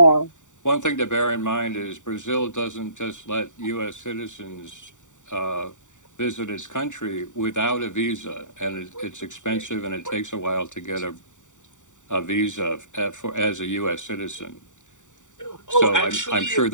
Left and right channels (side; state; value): right; late; 0.86 ms